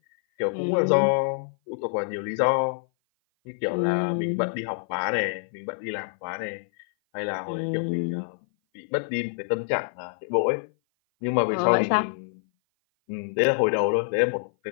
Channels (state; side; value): silent; right; 56 dB below the other